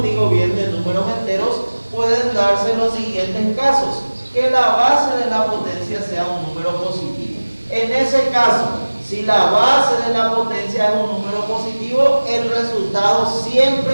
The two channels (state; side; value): inverted; both; correlation -1.00